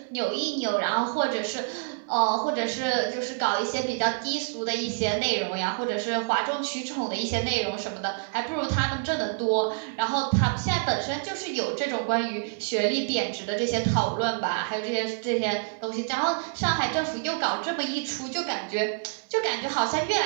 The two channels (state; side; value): silent; left; digital silence